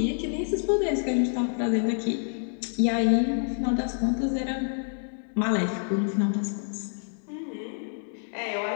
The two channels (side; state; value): right; silent; digital silence